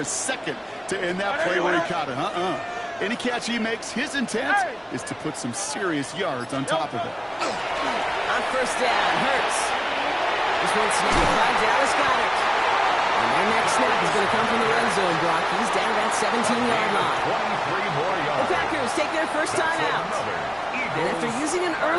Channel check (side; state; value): both; identical; correlation 1.00